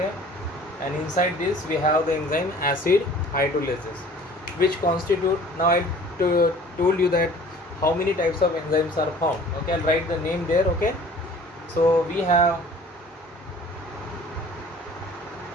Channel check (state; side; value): normal; both; correlation 0.49